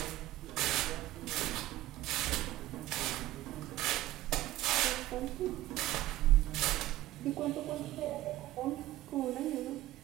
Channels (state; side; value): quieter; left; 16.0 dB